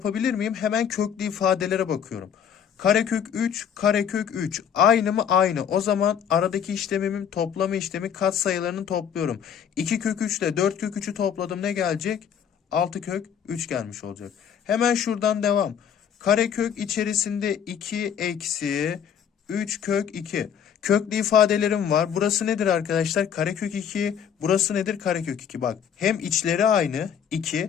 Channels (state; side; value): quieter; right; 8.3 dB